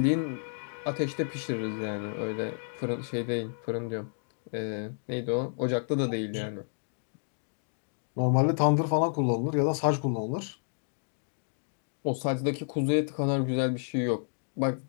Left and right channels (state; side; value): silent; right; digital silence